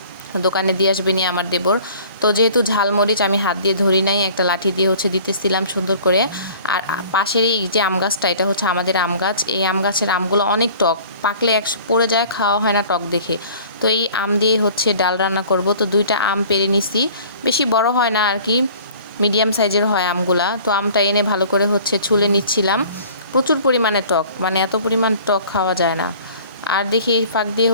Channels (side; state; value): both; inverted; correlation -0.48